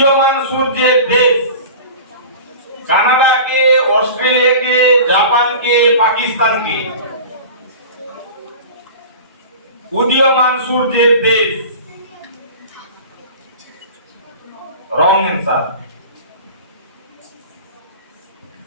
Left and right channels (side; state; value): both; inverted; correlation -0.37